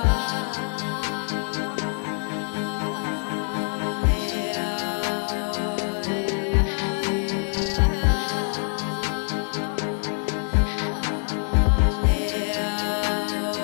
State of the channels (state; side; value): silent; right; digital silence